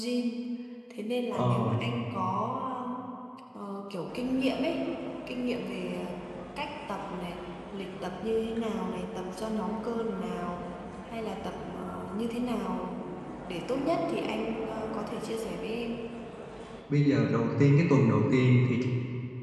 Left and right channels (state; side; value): identical; both; correlation 1.00